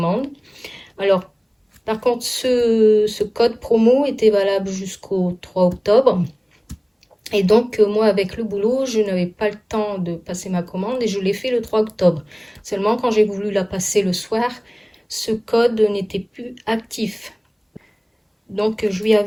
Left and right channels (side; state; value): both; identical; correlation 1.00